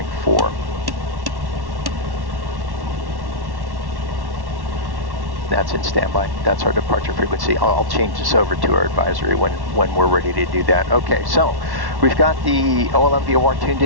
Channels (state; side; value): late; left; 1.1 ms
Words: That's in standby. That's our departure frequency. I'll change this over to our advisory when we're ready to do that. Okay, so we've got the OLM VOR tuned